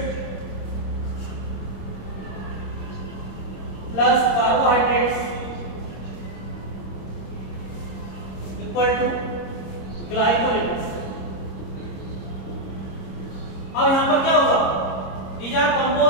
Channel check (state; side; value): late; right; 26 ms